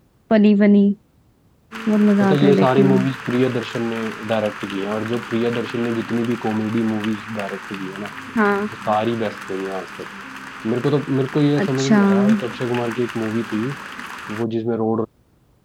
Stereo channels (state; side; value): identical; both; correlation 1.00